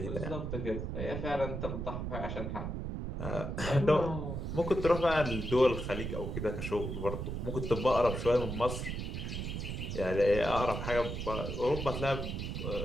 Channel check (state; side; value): noise; right; rumble, 4 dB below the sound